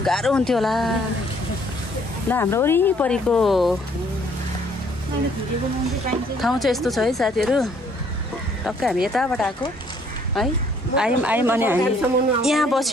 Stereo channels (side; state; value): both; normal; correlation 0.63